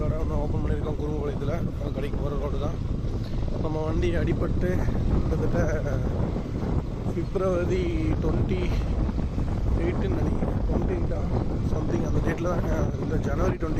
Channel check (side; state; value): both; identical; correlation 1.00